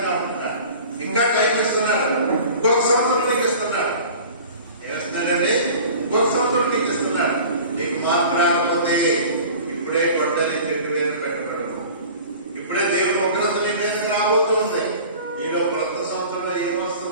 ఉంటున్నాడు, ఇంకా టైం ఇస్తున్నాడు. ఇంకొక సంవత్సరం నీకు ఇస్తున్నాడు. ఏమిస్తున్నాడండి? ఇంకొక సంవత్సరం నీకు ఇస్తున్నాడు. నీకు మార్పు రాకపోతే ఇప్పుడే గొడ్డలి పెట్టి వేలు పెట్టబడదు. ఇప్పుడే దేవుడు ఉగ్రత నీ మీద రాబోతుంది. నీలో క్రొత్త సంవత్సరంలో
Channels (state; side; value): inverted; both; correlation -0.42